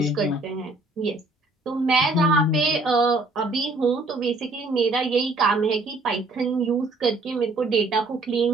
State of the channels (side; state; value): left; quieter; 3.1 dB